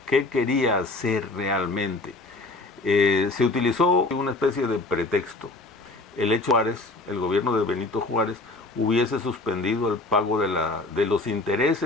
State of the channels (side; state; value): right; quieter; 3.0 dB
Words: ¿Qué quería hacer realmente? Se utilizó una especie de pretexto. El hecho Juárez, el gobierno de Benito Juárez, hubiese suspendido el pago de los